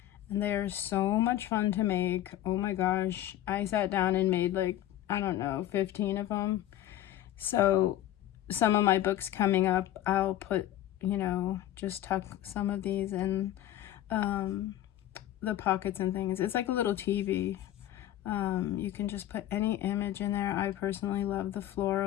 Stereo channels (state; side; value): quieter; right; 13.0 dB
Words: And they are so much fun to make. Oh my gosh. I sat down and made like, I don't know, 15 of them. So some of my books coming up, I'll put, you know, just tuck some of these in the pockets and things. It's like a little TV. You can just put any image in there. I personally love the